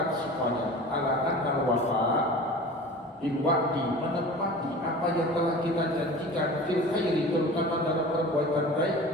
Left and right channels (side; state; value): both; normal; correlation 0.38